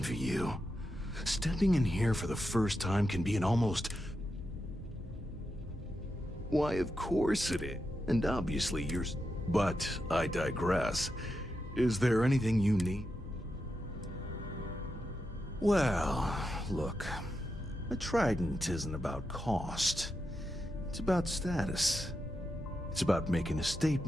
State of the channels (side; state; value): both; normal; correlation 0.87